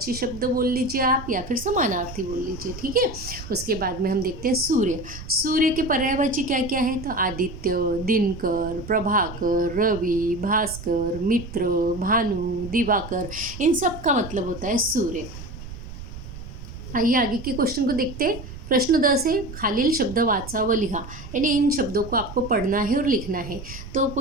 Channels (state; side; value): noise; right; rumble, 12 dB below the sound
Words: शब्द बोल लीजिए आप या फिर समानार्थी बोल लीजिए, ठीक है। उसके बाद में हम देखते हैं सूर्य। सूर्य के पर्यायवाची क्या क्या है, तो आदित्य, दिनकर, प्रभाकर, रवि, भास्कर, मित्र, भानु, दिवाकर, इन सब का मतलब होता है सूर्य। आइए आगे के क्वेश्चन को देखते हैं। प्रश्न 10 है, खालील शब्द वाचा व लिहा। यानी इन शब्दों को आपको पढ़ना है और लिखना है। तो